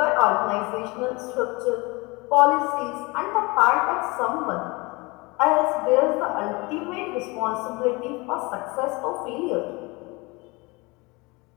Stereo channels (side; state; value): right; quieter; 25.5 dB